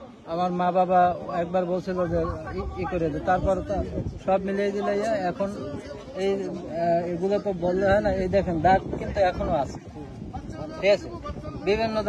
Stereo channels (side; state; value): both; identical; correlation 1.00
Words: আমার মা বাবা একবার বলছিল যে ই করে দে, তারপর সব মিলিয়ে দিলে এখন এই এগুলো তো বললে হয় না, এই দেখেন দাগ কিন্তু এখনো আছে, ঠিক আছে? বিভিন্ন